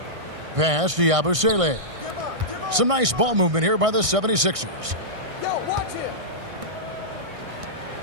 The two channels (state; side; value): late; left; 1.6 ms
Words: Pass to Yabusele. Some nice ball movement here by the 76ers.